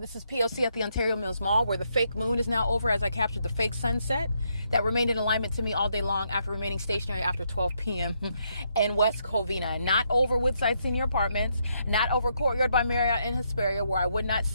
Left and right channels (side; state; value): both; inverted; correlation -0.76